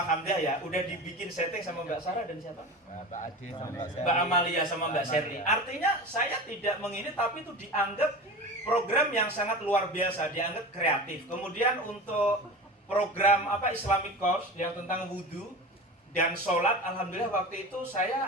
Hamdah ya, udah dibikin setting sama Mbak Sarah dan siapa? Mbak Ade sama Mbak Sherly. Mbak Amalia sama Mbak Sherly. Artinya saya tidak mengini tapi itu dianggap program yang sangat luar biasa, dianggap kreatif. Kemudian untuk program Islamic course yang tentang wudhu dan sholat, alhamdulillah waktu itu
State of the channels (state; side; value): normal; both; correlation 0.31